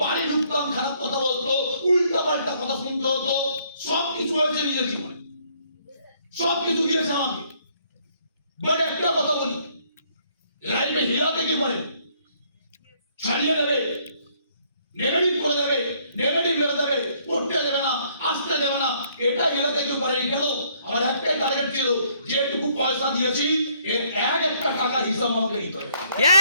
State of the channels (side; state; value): both; inverted; correlation -0.66